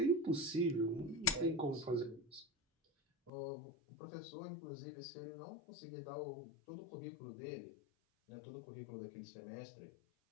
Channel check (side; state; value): right; drops out; at 3.3 s